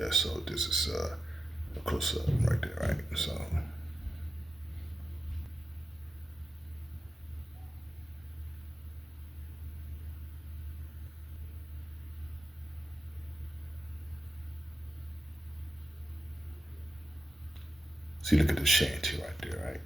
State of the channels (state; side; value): normal; both; correlation 0.91